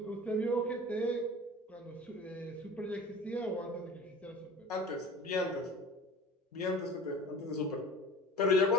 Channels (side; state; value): both; normal; correlation 0.39